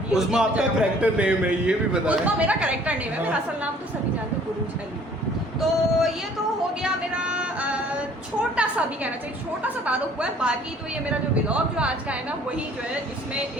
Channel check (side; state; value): both; normal; correlation 0.56